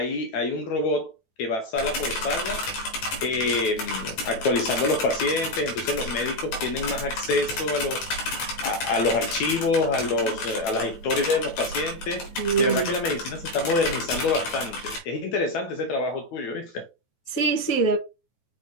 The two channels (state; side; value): late; right; 9.1 ms